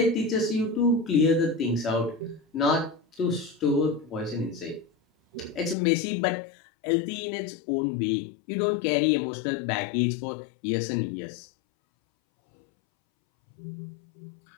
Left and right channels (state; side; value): drops out; right; at 5.8 s